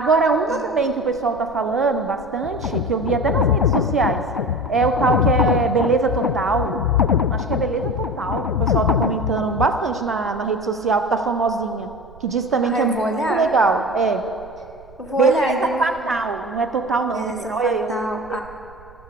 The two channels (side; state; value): right; noise; rumble, 24 dB below the sound